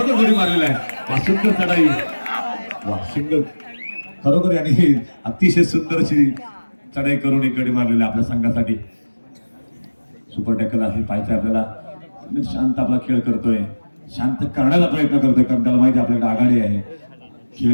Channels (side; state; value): both; inverted; correlation -1.00